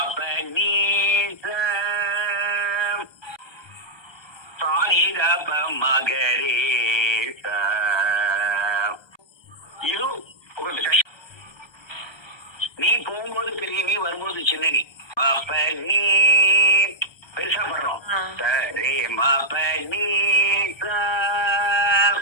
நீ சாரி தப மகரே இது கொஞ்சம் கஷ்டம். நீ போகும்போது பெரிய நீ வரும்போது சின்ன நீ. பாப்ப நீ பெருசா படுறோம். சரி மாப்ப நீ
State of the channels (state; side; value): late; right; 1.2 ms